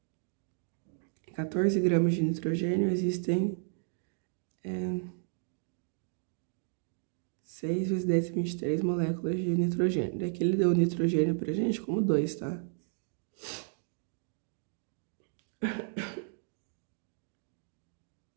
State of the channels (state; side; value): silent; left; digital silence